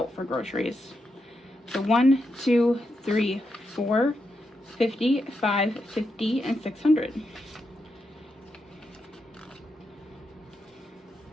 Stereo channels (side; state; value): both; normal; correlation 0.84